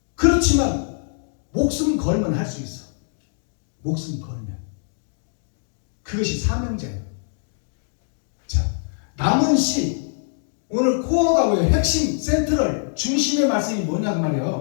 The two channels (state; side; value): silent; right; digital silence